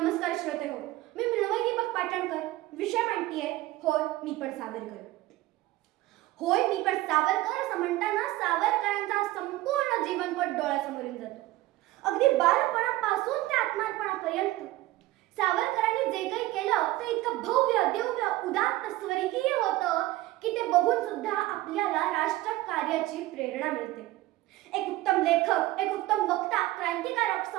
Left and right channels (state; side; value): quieter; left; 17.4 dB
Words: श्रोते हो, मी मृण्मयी दीपक पाटणकर, विषय मांडतीये होय मी पण सावरकर. होय मी पण सावरकर असं म्हणताना सावरकरांचा संपूर्ण जीवनपट डोळ्यासमोरून जातो. अगदी बालपणापासून ते आत्मार्पणापर्यंत सावरकरांनी जे काही केलं ते इतकं भव्य दिव्य उदात्त स्वर्गीय होतं की ते बघून सुद्धा आपल्याला राष्ट्रकार्याची प्रेरणा मिळते. एक उत्तम लेखक, एक उत्तम वक्ता, क्रांतिकारक,